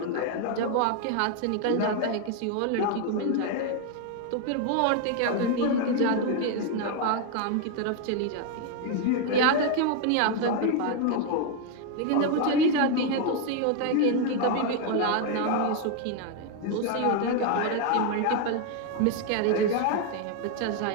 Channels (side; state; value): both; different; correlation 0.01